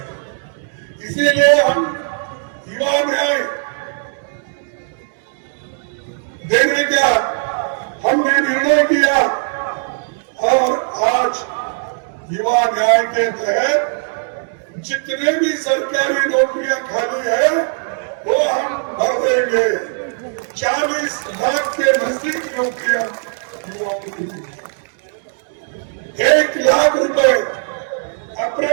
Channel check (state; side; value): silent; left; digital silence